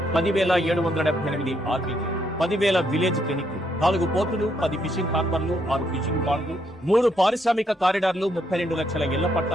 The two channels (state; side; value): normal; both; correlation 0.74